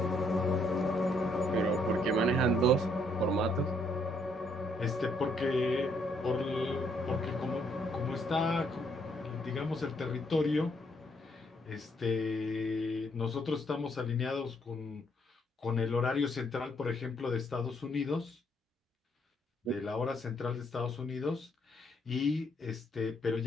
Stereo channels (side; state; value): both; normal; correlation 0.71